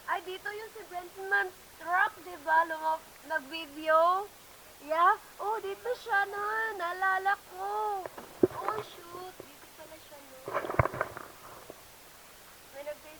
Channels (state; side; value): noise; left; rumble, 27 dB below the sound